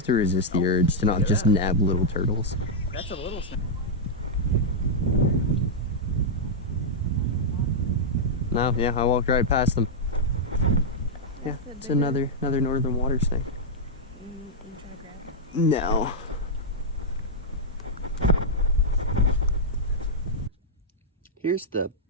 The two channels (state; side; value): normal; both; correlation -0.07